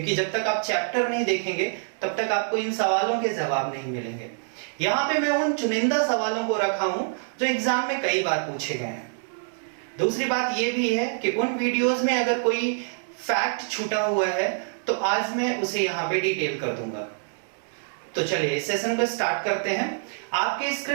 जब तक आप चैप्टर नहीं देखेंगे तब तक आपको इन सवालों के जवाब नहीं मिलेंगे। यहाँ पे मैं उन चुनिंदा सवालों को रखा हूं जो एग्जाम में कई बार पूछे गए हैं। दूसरी बात यह भी है कि उन वीडियोस में अगर कोई फैक्ट छूटा हुआ है तो आज मैं उसे यहाँ पे डिटेल कर दूंगा। तो चलिए इस सेशन को स्टार्ट करते हैं। आपके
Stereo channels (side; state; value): left; silent; digital silence